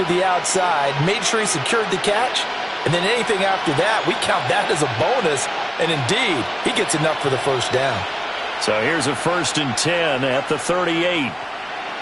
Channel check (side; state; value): both; identical; correlation 1.00